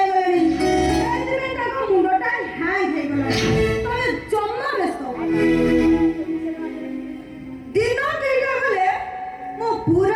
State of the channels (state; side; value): identical; both; correlation 1.00